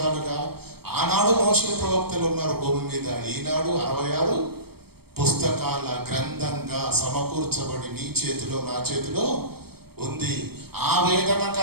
ఆనాడు మోషే ప్రవక్తలు ఉన్నారు భూమి మీద, ఈనాడు 66 పుస్తకాల గ్రంథంగా సమకూర్చబడి నీ చేతిలో నా చేతిలో ఉంది. ఆ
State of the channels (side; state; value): left; late; 0.96 ms